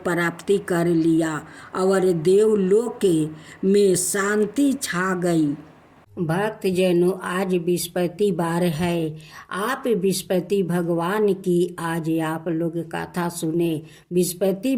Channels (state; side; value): identical; both; correlation 1.00